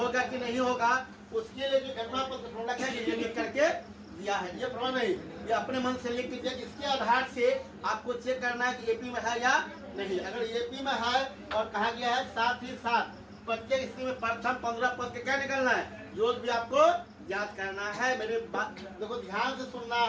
कि नहीं होगा, उसके लिए जो एनवा पद का फॉर्मूला क्या है, ये लिख करके दिया है। ये फॉर्मूला नहीं, ये अपने मन से लिख दीजिए। इसके आधार से आपको चेक करना है कि AP में है या नहीं। अगर AP में है और कहा गया है साथ ही साथ प्रत्येक स्थिति में प्रथम 15 पद के क्या निकलना है, योग भी आपको याद करना है। मेरे बात देखो ध्यान से सुनना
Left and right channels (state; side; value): identical; both; correlation 1.00